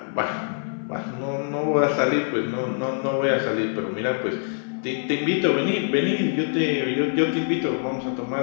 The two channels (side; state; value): right; silent; 56 dB below the other